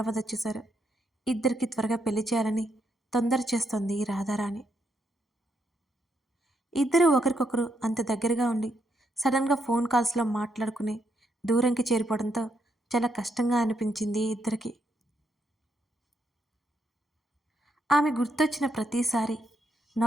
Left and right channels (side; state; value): both; normal; correlation 0.78